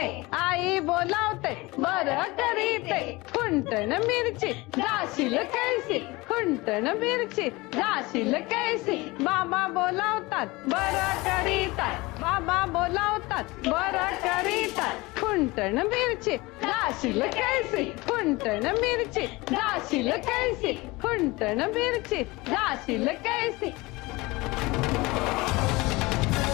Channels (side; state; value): right; quieter; 22.4 dB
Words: आई बोलावते बरं करीते कुंटण मिरची जाशील कैसे कुंटण मिरची जाशील कैसे बाबा बोलावतात बरं करीतात बाबा बोलावतात बरं करीतात कुंटण मिरची जाशील कैसे कुंटण मिरची जाशील कैसे कुंटण मिरची जाशील कैसे.